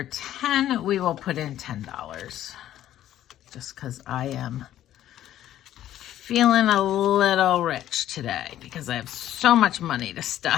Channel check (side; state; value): right; quieter; 12.4 dB